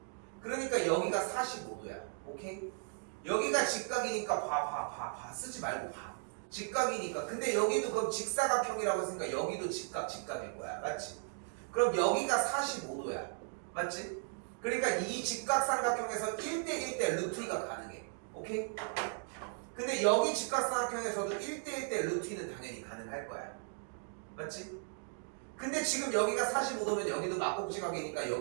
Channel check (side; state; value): left; silent; 53 dB below the other